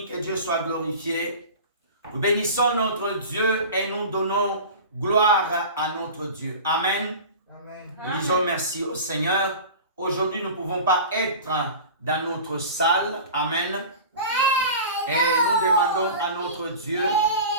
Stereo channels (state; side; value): inverted; both; correlation -0.35